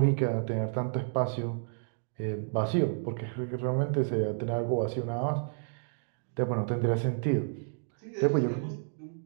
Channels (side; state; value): left; silent; digital silence